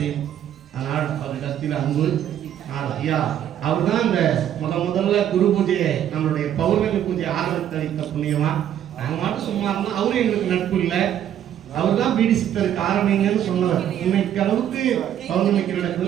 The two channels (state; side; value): quieter; left; 10.5 dB